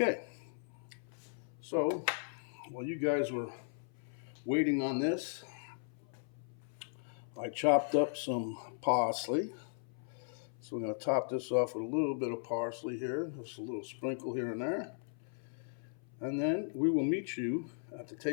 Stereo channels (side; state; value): right; silent; 53 dB below the other